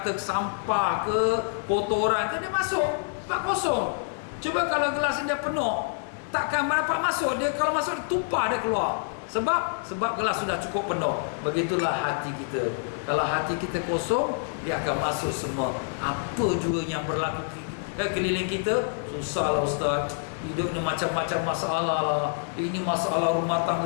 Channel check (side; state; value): right; silent; digital silence